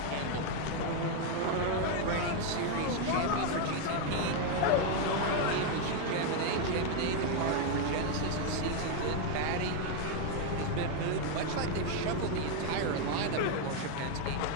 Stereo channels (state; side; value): different; both; correlation 0.01